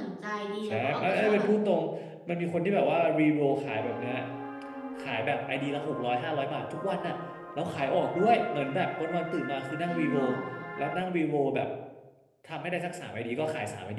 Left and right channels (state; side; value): identical; both; correlation 1.00